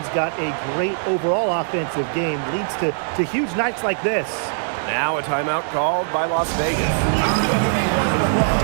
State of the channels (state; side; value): silent; left; digital silence